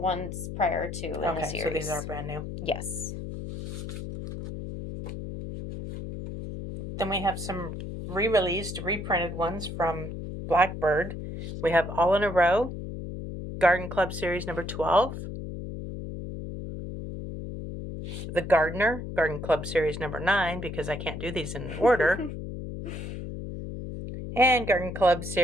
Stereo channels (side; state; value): left; noise; hum, 7 dB below the sound